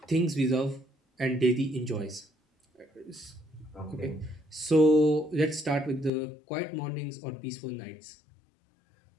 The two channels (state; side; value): drops out; right; at 6.1 s